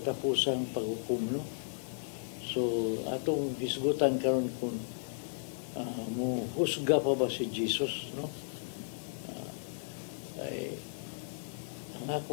paghukom. No? So, atong hisgutan karon kung mo husga pa ba si Jesus, no? Ay ang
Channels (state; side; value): silent; right; digital silence